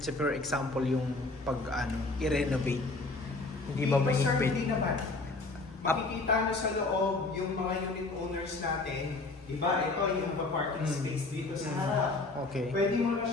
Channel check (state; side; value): quieter; right; 3.4 dB